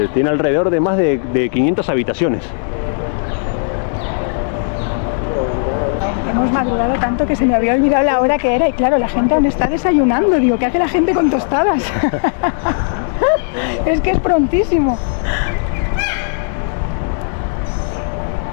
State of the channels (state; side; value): silent; right; digital silence